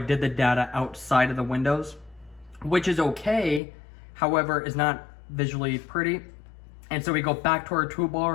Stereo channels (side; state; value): right; drops out; at 3.6 s